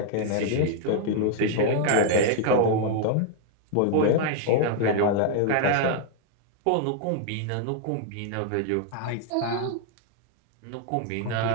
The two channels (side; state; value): both; different; correlation 0.00